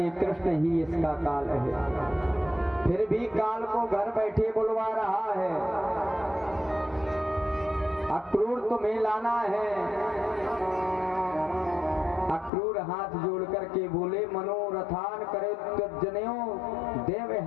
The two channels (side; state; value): right; drops out; at 12.5 s